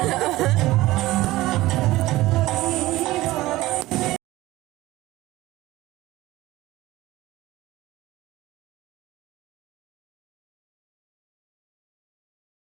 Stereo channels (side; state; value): left; quieter; 17.7 dB